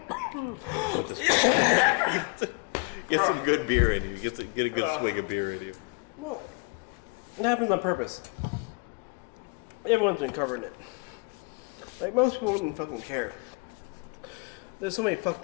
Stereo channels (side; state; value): right; quieter; 31.3 dB